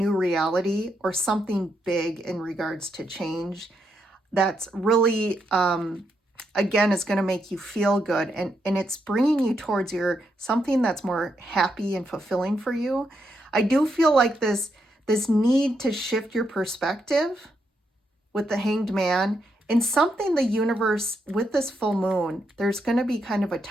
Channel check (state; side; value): normal; both; correlation 0.80